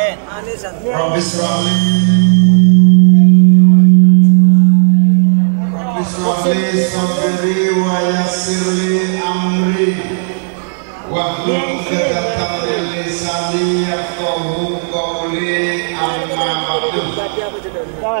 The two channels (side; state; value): left; silent; 72 dB below the other